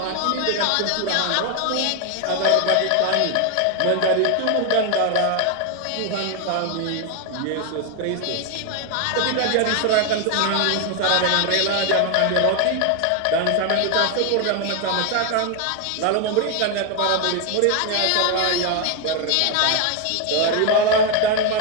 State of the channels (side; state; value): both; different; correlation 0.01